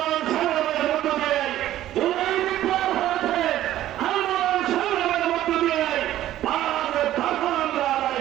সংগ্রামের মধ্য দিয়ে জুলাই বিপ্লব হয়েছে, আন্দোলন সংগ্রামের মধ্য দিয়ে ভারতের দখল আমরা আদায়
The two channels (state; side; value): quieter; left; 13.4 dB